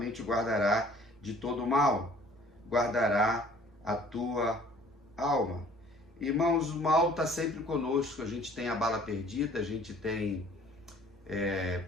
guardará de todo mal, guardará a tua alma. Irmãos, o mal está sempre conosco, a gente tem a bala perdida, a gente tem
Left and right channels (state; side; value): normal; both; correlation 0.53